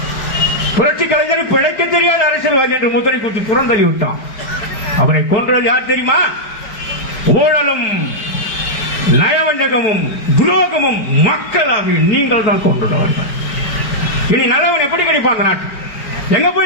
புரட்சி கலைஞர் பிழைக்க தெரியாத அரசியல்வாதி என்று முத்திரை குத்தி புறந்தள்ளி விட்டான். அவரை கொன்றது யார் தெரியுமா? ஊழலும் நயவஞ்சகமும் துரோகமும் மக்களாக நீங்கள் தான் கொண்டுள்ளவர்கள். இனி நல்லவன் எப்படி கிடைப்பான் அந்த நாட்டு? எங்க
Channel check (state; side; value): late; right; 4.9 ms